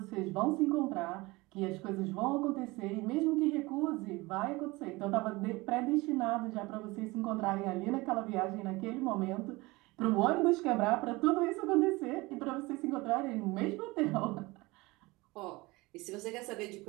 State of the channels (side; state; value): left; quieter; 22.4 dB